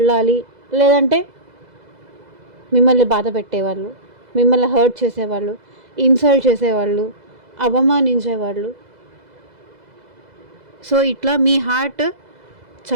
లేదంటే మిమ్మల్ని బాధ పెట్టేవాళ్ళు, మిమ్మల్ని హర్ట్ చేసేవాళ్ళు, ఇన్సల్ట్ చేసేవాళ్ళు, అవమానించేవాళ్ళు. సో, ఇట్లా మీ హార్ట్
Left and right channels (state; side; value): late; left; 2.0 ms